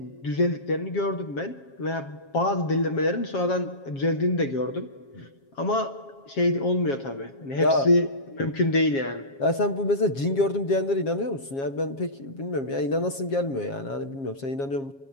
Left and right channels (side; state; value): right; late; 7.4 ms